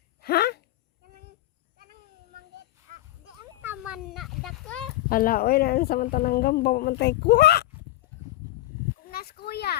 Ha? Kanang mangit. Di ang naman na dako. Hala, oy, naan sa mantanang gamba, mantay kuha. Kung nas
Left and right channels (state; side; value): quieter; right; 16.0 dB